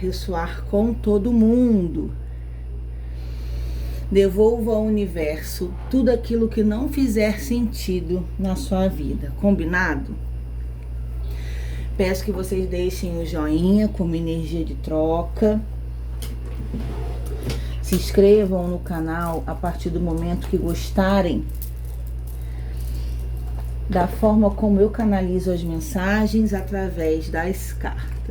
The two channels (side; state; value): both; identical; correlation 1.00